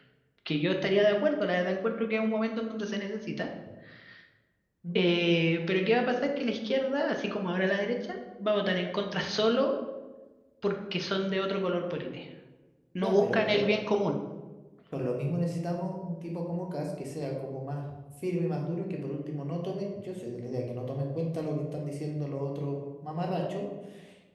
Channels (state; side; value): identical; both; correlation 1.00